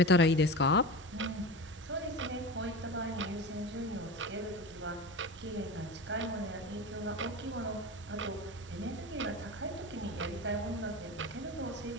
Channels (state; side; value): normal; both; correlation 0.27